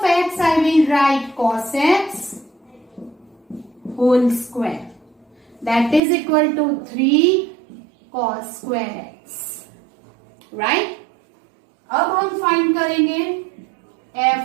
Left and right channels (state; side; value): drops out; left; at 6.0 s